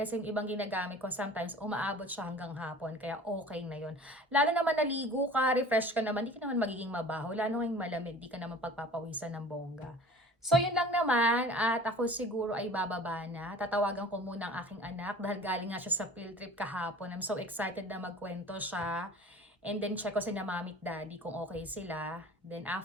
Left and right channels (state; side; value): normal; both; correlation 0.43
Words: yung ibang ginagamit ko sometimes umaabot siya hanggang hapon. Kaya okay na yun. Lalo naman naligo ka, refresh ka naman, di ka naman magiging mabaho. Lalo ngayong malamig, di ka naman pagpapawisan ng bongga. So, yun lang naman at ako siguro ay bababa na. Tatawagan ko muna ang aking anak dahil galing nga siya sa field trip kahapon. I'm so excited na magkwento siya. And then, check ko si na mami at daddy kung okay sila. Then,